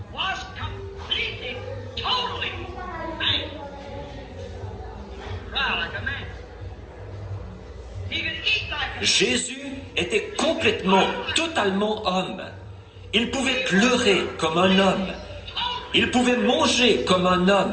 was completely, totally man. Right, like a man. He could eat like a Jésus était complètement, totalement homme. Il pouvait pleurer comme un homme. Il pouvait manger comme un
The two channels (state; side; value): identical; both; correlation 1.00